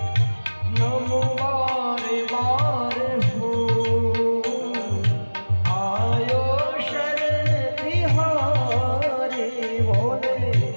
नमो बारे बार हो आयो शरण तिहारे, बोले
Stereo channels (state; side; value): inverted; both; correlation -1.00